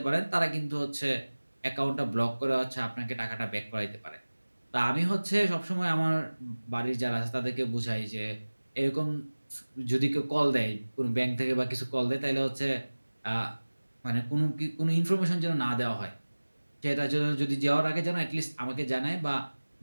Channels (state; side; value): inverted; both; correlation -1.00